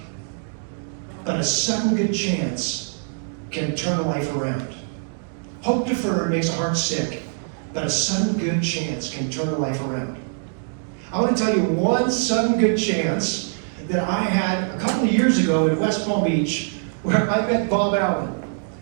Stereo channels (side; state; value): left; silent; 63 dB below the other